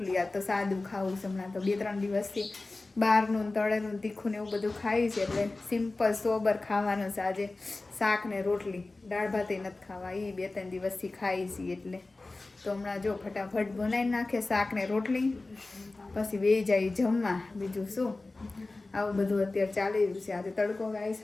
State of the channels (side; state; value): right; quieter; 3.2 dB